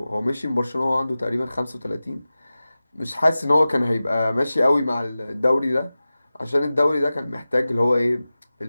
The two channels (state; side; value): inverted; both; correlation -0.96